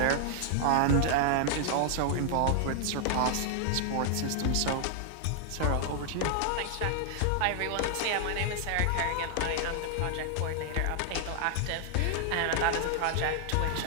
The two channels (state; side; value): different; both; correlation 0.00